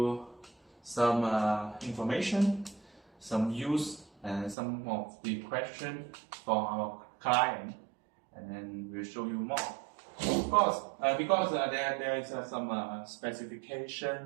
some information, some use, and some of the questions for our client, and then we'll show you more. Of course, because there is some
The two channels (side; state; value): left; drops out; at 4.5 s